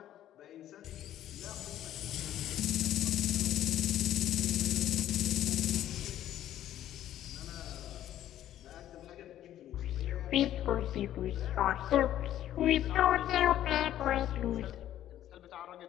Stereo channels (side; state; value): right; quieter; 12.1 dB